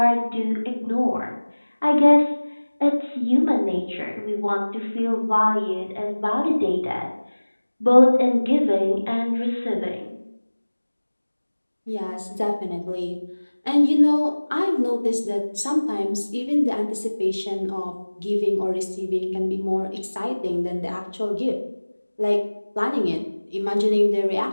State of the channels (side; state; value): both; inverted; correlation -1.00